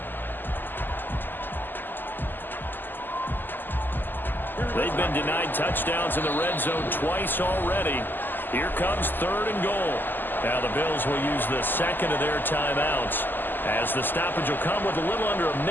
They've been denied touchdowns in the red zone twice already. Here comes 3rd and goal. Now the Bills will use the 2nd of their timeouts as the stoppage will come with a little under a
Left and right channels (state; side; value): late; right; 0.091 ms